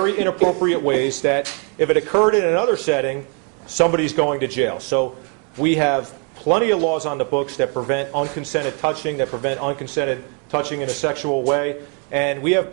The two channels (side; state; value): left; quieter; 37.9 dB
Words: inappropriate ways that if it occurred in another setting, somebody's going to jail. So we have plenty of laws on the books that prevent unconsented touching, that prevent unconsented touching in a sexual way. And we have